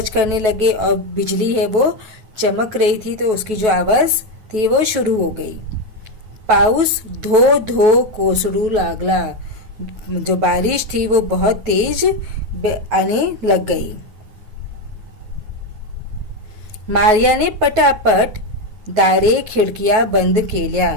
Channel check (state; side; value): late; left; 9.3 ms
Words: करने लगे, और बिजली है वो चमक रही थी तो उसकी जो आवाज थी वो शुरू हो गई। पाऊस धो धो कोसळू लागला। जो बारिश थी वो बहुत तेज आने लग गई। मारिया ने पटापट दारे खिड़कियां बंद केल्या।